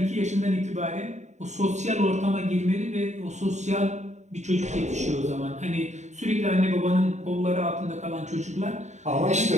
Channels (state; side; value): late; left; 0.34 ms